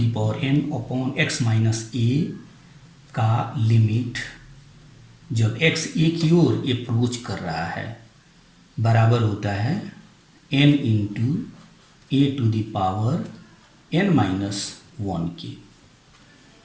power n upon x minus a का लिमिट जब x ए की ओर अप्रोच कर रहा है बराबर होता है n into a to the power n minus 1 के।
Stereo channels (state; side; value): identical; both; correlation 1.00